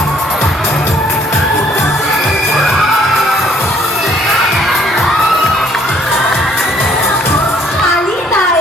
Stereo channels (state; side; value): normal; both; correlation 0.63